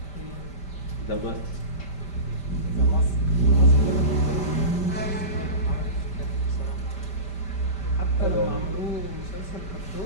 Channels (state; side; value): late; right; 5.1 ms